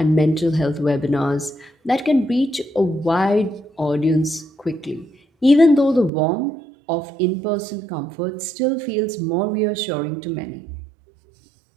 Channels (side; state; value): left; drops out; at 6.1 s